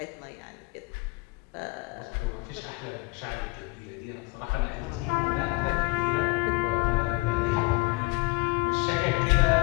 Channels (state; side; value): quieter; right; 24.8 dB